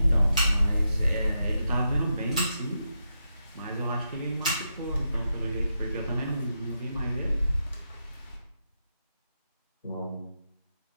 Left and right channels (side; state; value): both; inverted; correlation -0.85